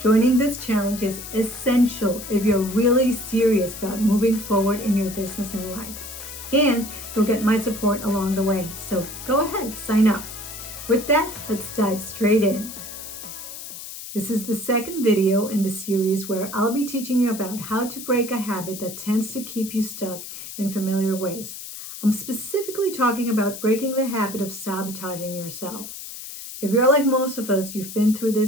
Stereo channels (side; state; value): left; noise; hiss, 11 dB below the sound